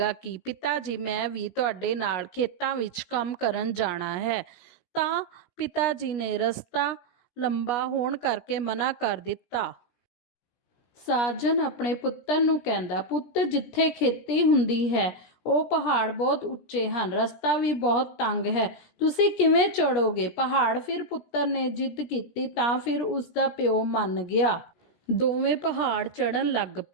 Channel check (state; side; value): late; right; 17 ms